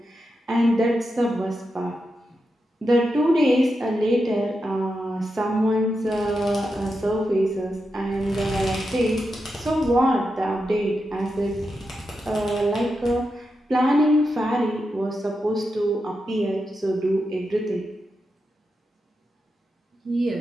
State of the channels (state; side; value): normal; both; correlation 0.87